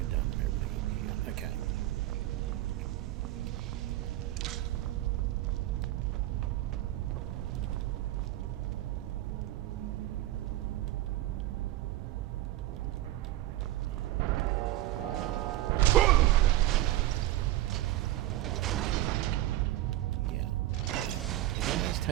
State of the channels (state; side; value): quieter; left; 14.8 dB